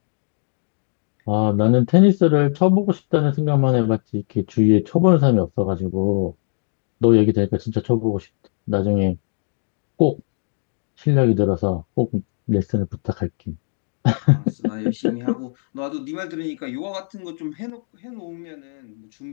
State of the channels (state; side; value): silent; right; 56 dB below the other